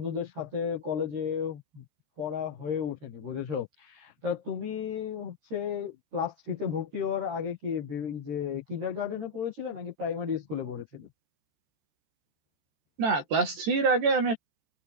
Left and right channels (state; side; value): late; left; 14 ms